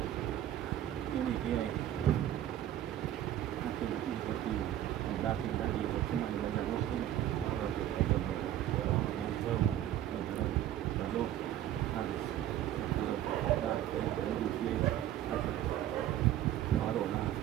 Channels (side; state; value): left; quieter; 12.2 dB